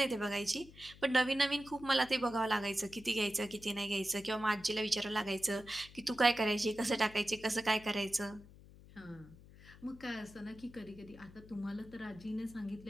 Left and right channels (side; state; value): left; noise; hum, 20 dB below the sound